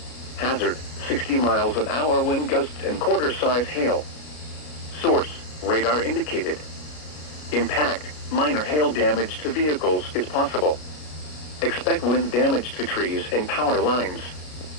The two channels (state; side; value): late; right; 33 ms